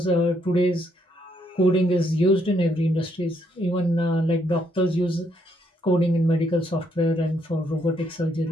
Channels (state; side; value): normal; both; correlation 0.73